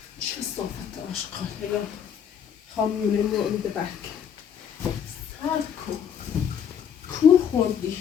چه صافت آشقاله یا خامیونه مورد برک سر کو خوردی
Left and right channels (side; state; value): right; quieter; 8.2 dB